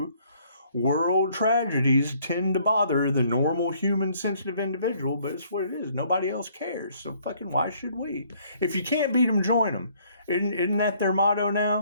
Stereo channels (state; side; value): inverted; both; correlation -0.63